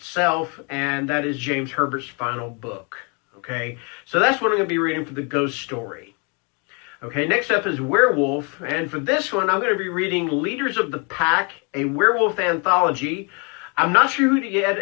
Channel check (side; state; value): right; quieter; 34.1 dB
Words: and that is James Herbert's final book. Okay, so that's what I'm going to be reading for the Ghost Story. Okay, next up is Werewolf, and for this one, I'm going to be reading Leaders of the Pack, a werewolf anthology. I'm not sure who the